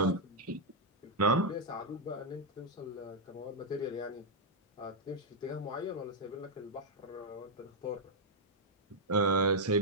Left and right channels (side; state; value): both; normal; correlation -0.04